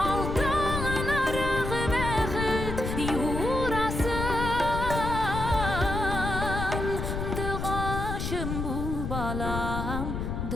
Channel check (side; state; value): left; noise; rumble, 3 dB below the sound